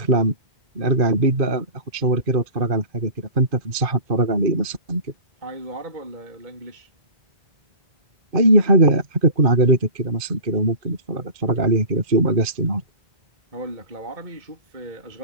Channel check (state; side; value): late; left; 2.4 ms